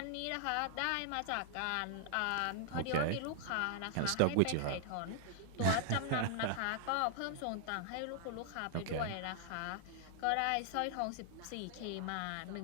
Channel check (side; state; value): both; different; correlation 0.00